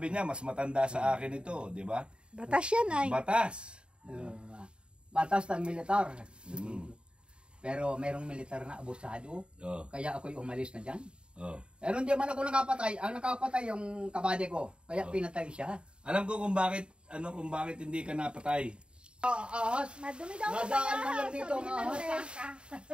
niya, mas matanda sa akin ito, di ba? Batas yan ay. Batas. Batas ng militar. Mm. Pero merong militar na abusado. Oh, Kaya ako'y umalis na dyan. oh. Pero hindi man ako nakapatay. Ang nakapatay yung kabade ko. Kaya pinatay siya. Alam ko kung bakit hindi ka napatay. Ahas. Madumi daw Nadaan man lang dito ang ahas.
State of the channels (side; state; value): left; late; 0.053 ms